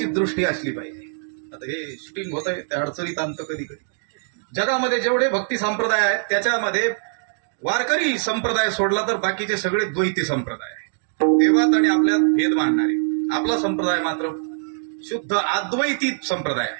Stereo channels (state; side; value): silent; left; digital silence